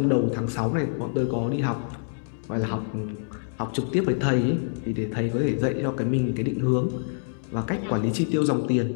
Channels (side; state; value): right; silent; digital silence